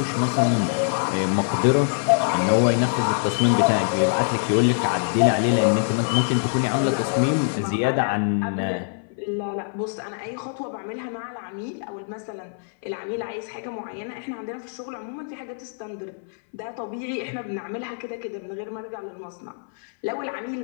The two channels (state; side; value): silent; right; 59 dB below the other